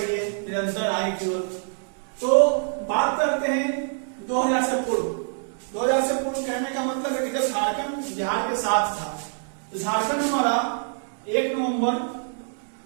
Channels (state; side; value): silent; left; digital silence